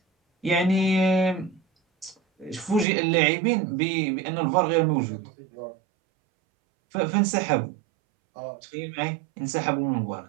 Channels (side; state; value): left; drops out; at 2.9 s